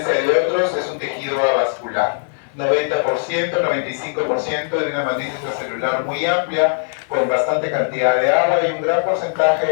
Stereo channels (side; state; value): right; silent; digital silence